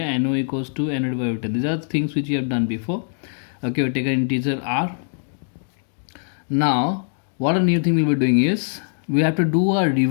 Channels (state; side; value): silent; right; digital silence